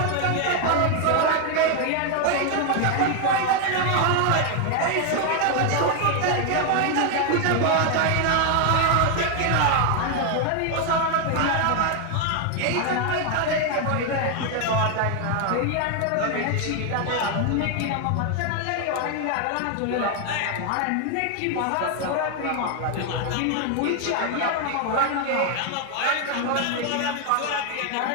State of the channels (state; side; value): different; both; correlation 0.01